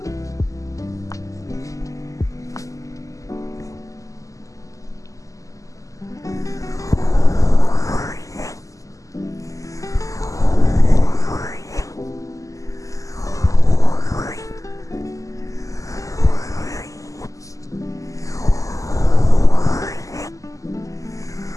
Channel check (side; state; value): right; late; 0.16 ms